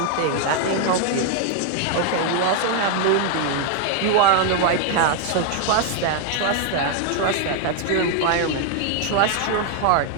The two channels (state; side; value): different; both; correlation 0.00